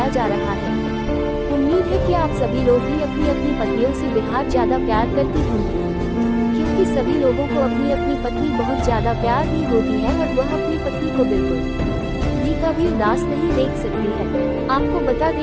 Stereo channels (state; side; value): identical; both; correlation 1.00